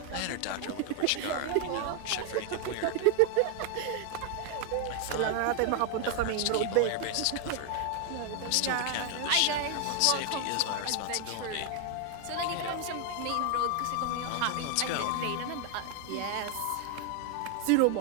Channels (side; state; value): both; different; correlation 0.00